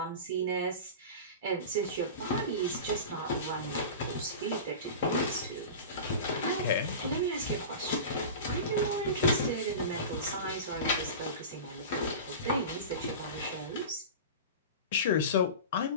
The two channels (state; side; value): inverted; both; correlation -0.30